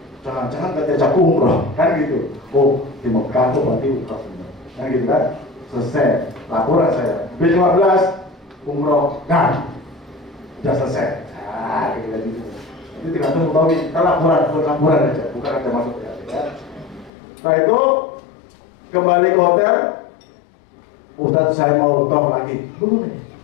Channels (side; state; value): right; drops out; at 17.1 s